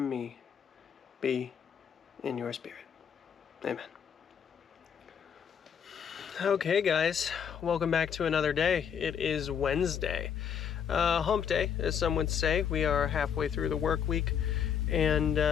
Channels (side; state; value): right; quieter; 7.9 dB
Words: me be in your spirit. Amen. Okay, guys, welcome back to another day. It is Wednesday. Hump day, as some would say. We are halfway through the work week, and,